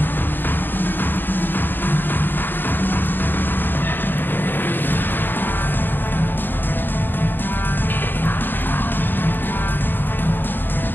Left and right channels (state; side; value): late; right; 0.095 ms